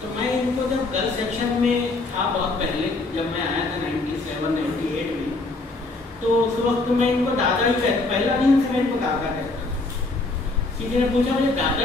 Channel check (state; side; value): quieter; right; 3.3 dB